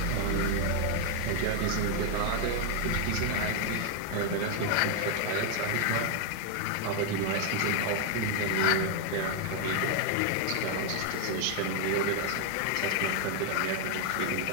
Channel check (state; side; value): different; both; correlation 0.00